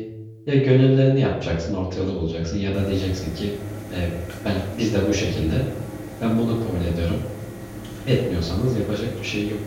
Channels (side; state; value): both; identical; correlation 1.00